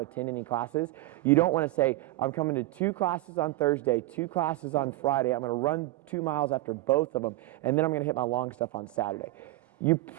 attend any classes? You don't want to say, I'm coming to 2 classes on Thursday, 2 classes on Friday. I'm going to run 2 miles after both of them, and then I'm going to hit my long stuff on Saturday. You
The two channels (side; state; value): left; quieter; 17.8 dB